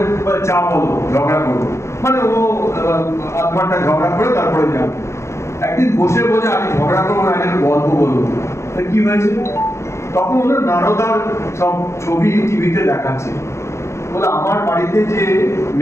চা বলো, ঝগড়া করবো, মানে ও 1/2 ঘন্টা ঝগড়া করে তারপরে যান। একদিন বসে বলে আমি ঝগড়া করবো না, একটা গল্প বলবো। কি হয়েছে? তখন ওনার নারদার সব ছবি টিভিতে দেখাচ্ছে। বলে আমার বাড়িতে যে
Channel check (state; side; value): late; right; 0.13 ms